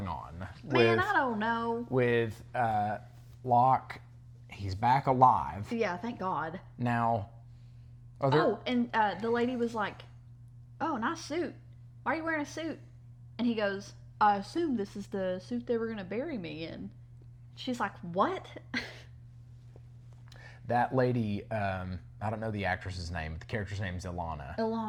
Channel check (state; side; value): identical; both; correlation 1.00